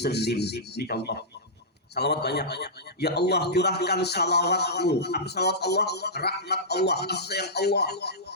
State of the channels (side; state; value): both; normal; correlation -0.14